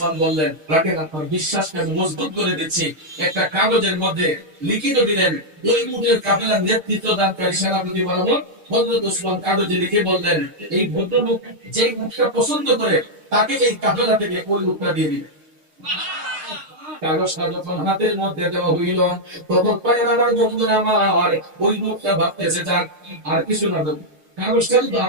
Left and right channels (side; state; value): left; late; 6.5 ms